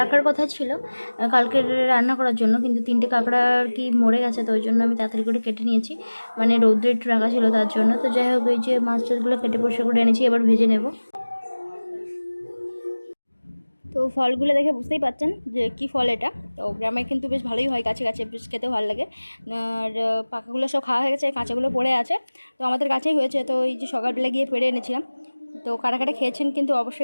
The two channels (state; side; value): inverted; both; correlation -1.00